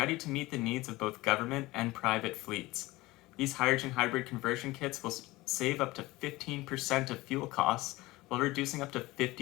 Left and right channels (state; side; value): quieter; right; 20.0 dB